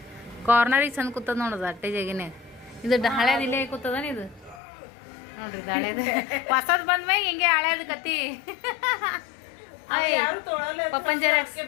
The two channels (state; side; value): drops out; right; at 4.6 s